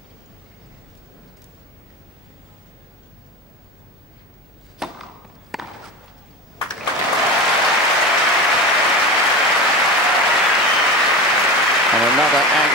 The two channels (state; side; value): normal; both; correlation 0.27